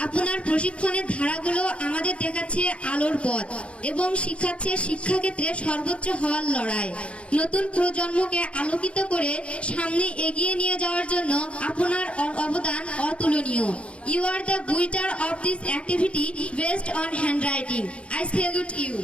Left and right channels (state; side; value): late; right; 0.060 ms